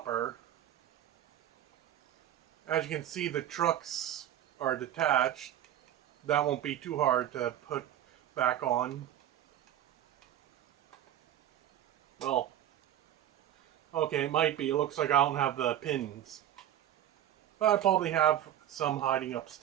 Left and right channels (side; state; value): left; quieter; 11.5 dB